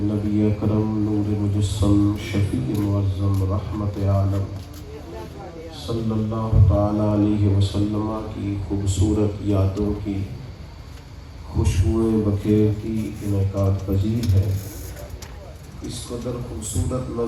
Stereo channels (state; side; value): identical; both; correlation 1.00